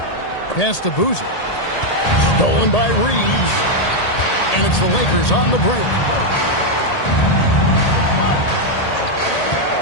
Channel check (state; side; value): late; right; 1.8 ms